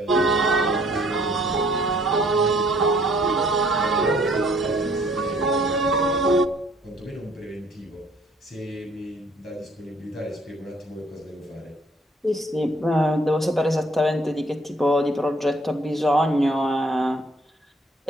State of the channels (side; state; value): both; normal; correlation 0.61